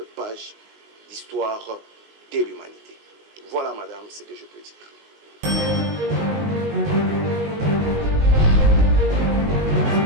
page d'histoire de l'humanité. Voilà, madame, ce que je peux dire.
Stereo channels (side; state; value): left; late; 19 ms